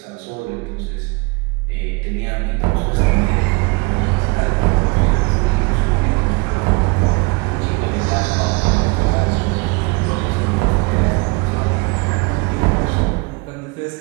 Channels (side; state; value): left; quieter; 28.7 dB